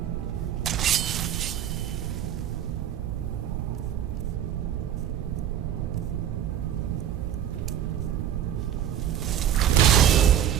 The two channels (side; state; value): left; quieter; 10.4 dB